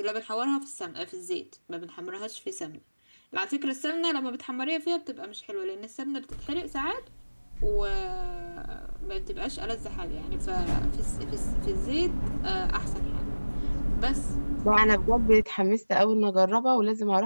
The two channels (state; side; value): inverted; both; correlation -1.00